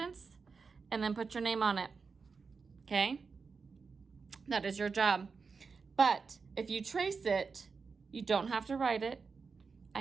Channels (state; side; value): quieter; left; 5.0 dB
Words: and then put your name on it. Okay? That is your job. But if you trace it, you don't have to write it.